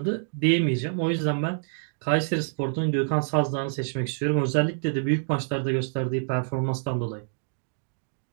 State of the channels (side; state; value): left; silent; digital silence